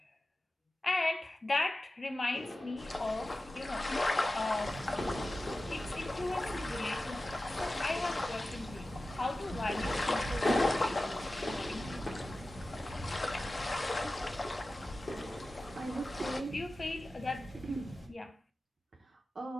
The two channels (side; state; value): both; normal; correlation 0.95